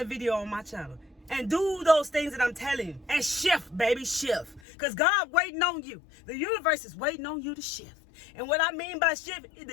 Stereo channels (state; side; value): drops out; right; at 4.6 s